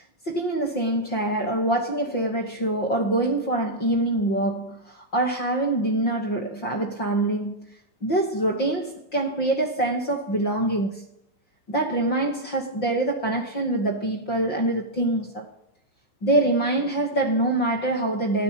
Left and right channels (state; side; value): late; right; 5.7 ms